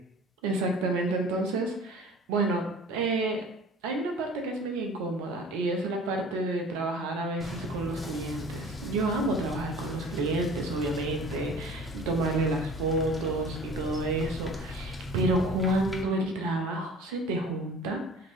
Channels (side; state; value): both; normal; correlation 0.44